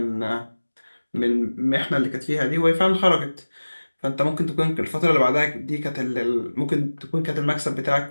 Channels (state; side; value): inverted; both; correlation -1.00